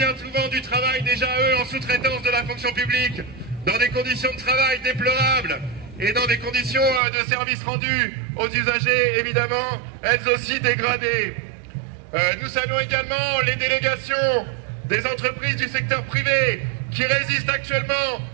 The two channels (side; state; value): left; drops out; at 7.0 s